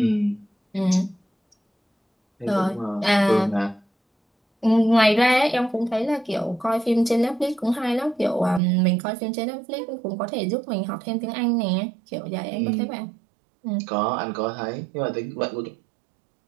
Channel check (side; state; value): left; drops out; at 8.6 s